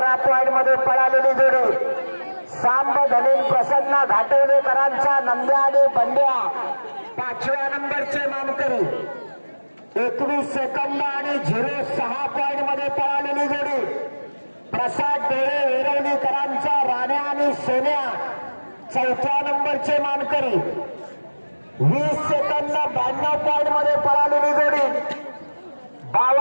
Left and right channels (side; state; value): both; inverted; correlation -1.00